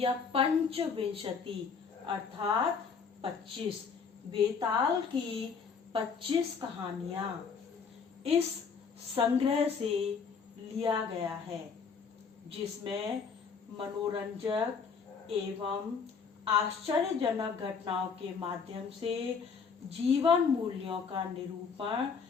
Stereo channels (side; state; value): right; quieter; 5.7 dB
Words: पंचविंशति अर्थात 25। बेताल की 25 कहानियां इस संग्रह से लिया गया है, जिसमें मनोरंजक एवं आश्चर्यजनक घटनाओं के माध्यम से जीवन मूल्यों का निरूपण